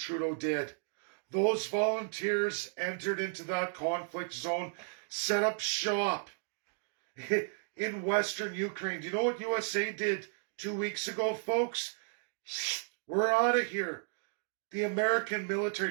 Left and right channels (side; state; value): left; silent; digital silence